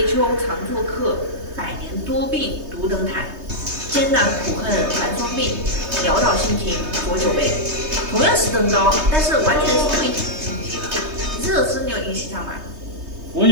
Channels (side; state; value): left; late; 3.2 ms